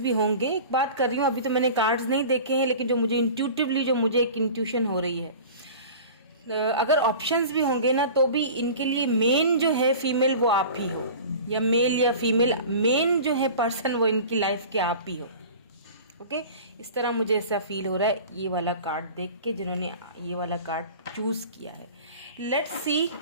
होंगे। एक बात कर रही हूँ, अभी तो मैंने कार्ड्स नहीं देखे हैं, लेकिन जो मुझे इंट्यूटिवली जो मुझे एक इंट्यूशन हो रही है, अगर ऑप्शंस भी होंगे ना, तो भी इनके लिए मेन जो है फीमेल वो आप ही हो, या मेल या फीमेल, मेन जो है पर्सन वो इनकी लाइफ के आप ही हो। ओके, इस तरह मुझे ऐसा फील हो रहा है ये वाला कार्ड देख के, जिन्होंने ये वाला कार्ड चूज किया है। लेट्स सी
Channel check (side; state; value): both; inverted; correlation -0.39